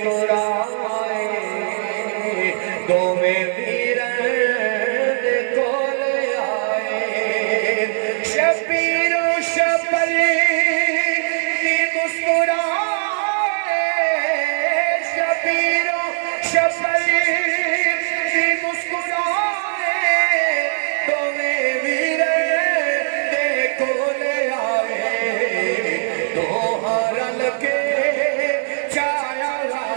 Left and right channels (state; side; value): silent; left; digital silence